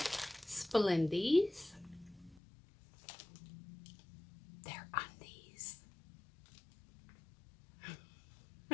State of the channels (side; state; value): right; drops out; at 2.4 s